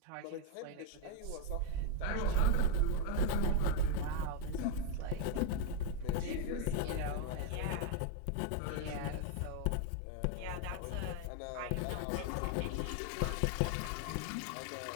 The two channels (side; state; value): both; different; correlation 0.01